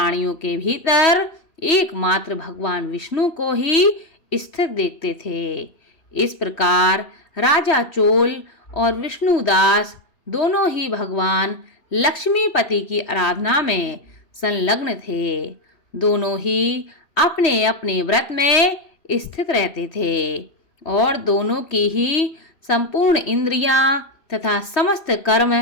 के भीतर एकमात्र भगवान विष्णु को ही स्थित देखते थे। इस प्रकार राजा चोल और विष्णुदास दोनों ही भगवान लक्ष्मीपति की आराधना में संलग्न थे। दोनों ही अपने अपने व्रत में स्थित रहते थे और दोनों की ही संपूर्ण इंद्रियां तथा समस्त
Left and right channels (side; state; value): right; late; 3.1 ms